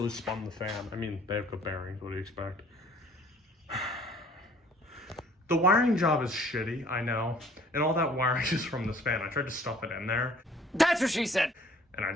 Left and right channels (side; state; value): both; normal; correlation 0.55